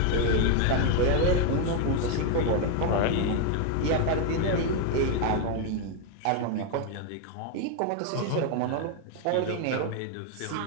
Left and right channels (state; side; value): different; both; correlation 0.01